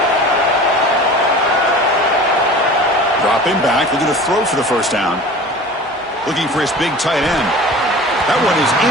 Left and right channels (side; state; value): both; normal; correlation 0.39